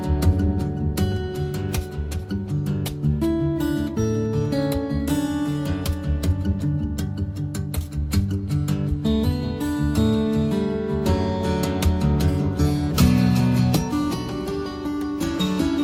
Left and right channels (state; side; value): identical; both; correlation 1.00